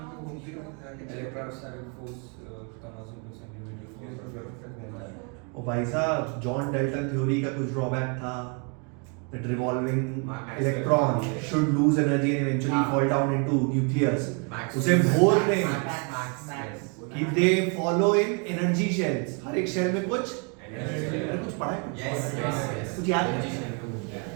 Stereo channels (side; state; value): left; quieter; 36.5 dB